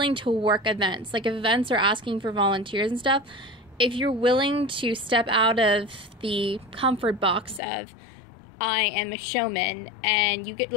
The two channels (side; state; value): right; drops out; at 7.6 s